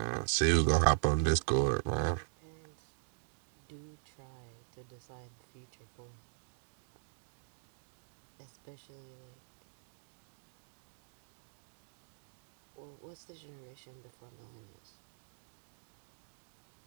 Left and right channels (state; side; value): silent; left; digital silence